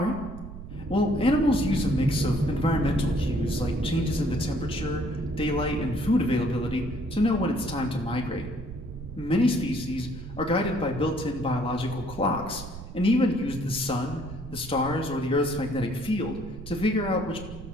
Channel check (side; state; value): right; noise; rumble, 12 dB below the sound